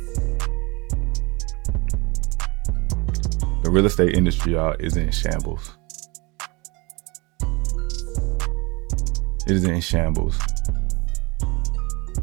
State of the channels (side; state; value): left; quieter; 26.4 dB